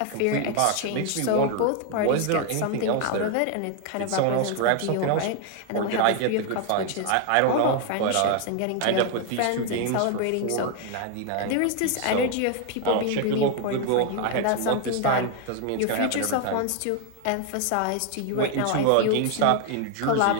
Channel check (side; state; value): both; different; correlation 0.01